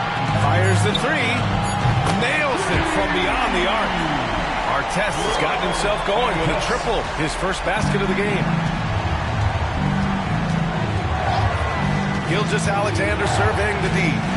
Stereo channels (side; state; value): both; identical; correlation 1.00